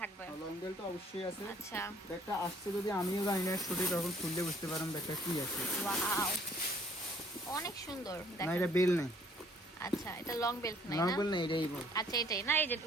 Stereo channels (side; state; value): both; normal; correlation 0.59